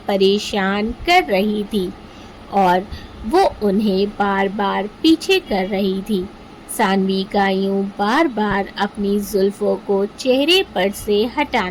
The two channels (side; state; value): both; identical; correlation 1.00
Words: परेशान कर रही थी और वो उन्हें बार बार पीछे कर रही थी। सानवी का यूं बार बार अपनी जुल्फों को चेहरे पर से